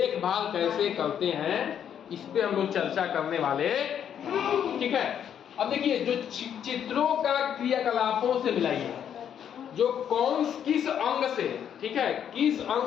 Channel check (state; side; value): quieter; right; 9.0 dB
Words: कैसे करते हैं इस पे हम लोग चर्चा करने वाले, ठीक है। अब देखिए जो चित्रों का क्रियाकलापों से मिलाइए, जो किस अंग से, ठीक है, किस